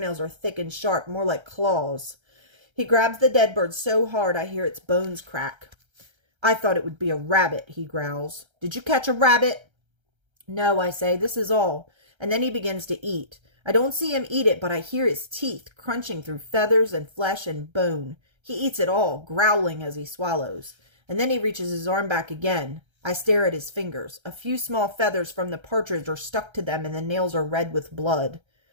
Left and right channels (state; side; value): late; left; 1.3 ms